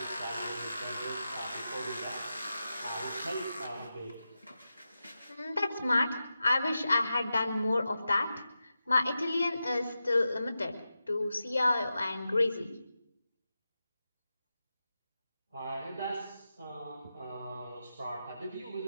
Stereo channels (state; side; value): inverted; both; correlation -0.90